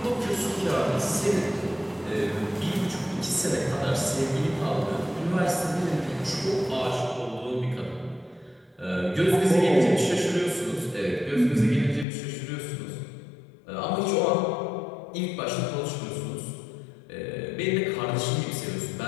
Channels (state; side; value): drops out; right; at 12.1 s